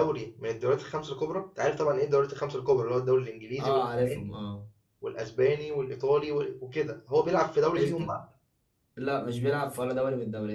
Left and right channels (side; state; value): both; identical; correlation 1.00